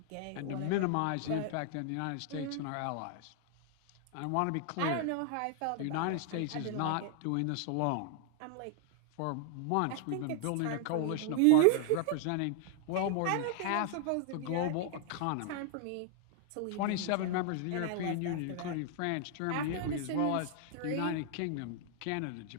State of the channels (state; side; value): different; both; correlation 0.00